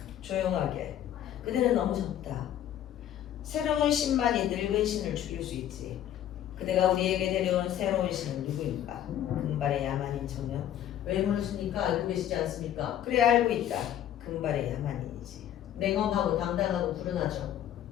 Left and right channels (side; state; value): right; quieter; 11.1 dB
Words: 조용하게. 그대는 너무 적다. 새로운 신만이 늙은 신을 죽일 수 있지. 그대가 우리에게 데려온 새로운 신은 누구인가? 금발의 야만인 청년? 왜 물으십니까? 알고 계시지 않습니까? 그래 알고 있다. 금발의 야만인이지. 냉엄하고 당당하고 불운하죠.